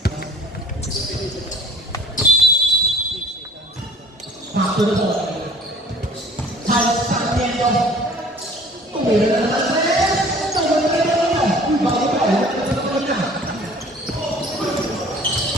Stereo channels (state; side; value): normal; both; correlation 0.51